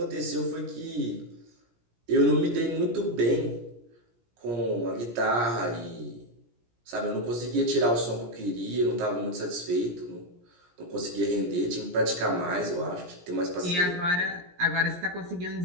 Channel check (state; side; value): late; left; 17 ms